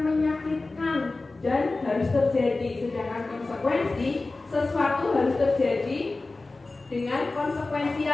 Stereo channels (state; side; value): quieter; right; 3.3 dB